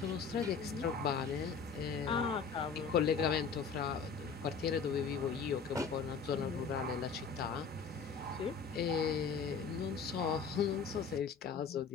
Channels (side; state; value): right; quieter; 5.7 dB